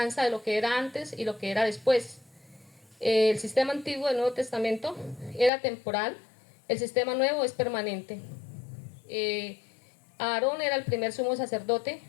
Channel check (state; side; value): drops out; right; at 5.5 s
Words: de lo que era antes y lo que era después. El sistema antiguo del Nuevo Testamento era temporal, el sistema nuevo es permanente. Aarón era el primer sumo sacerdote,